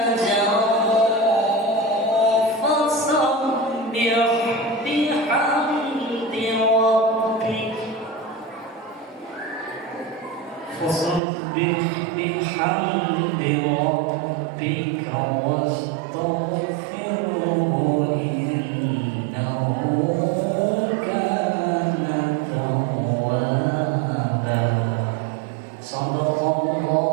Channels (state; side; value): drops out; left; at 11.2 s